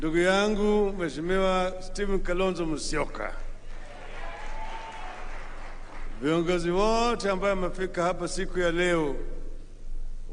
yangu Mheshimiwa Stephen Kalonzo Musyoka, viongozi wote ambao wamefika hapa siku ya leo,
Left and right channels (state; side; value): identical; both; correlation 1.00